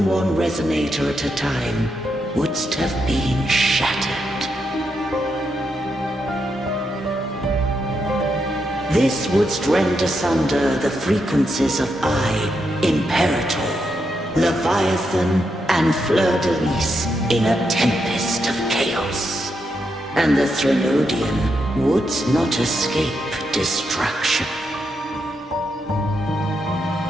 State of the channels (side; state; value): both; normal; correlation 0.82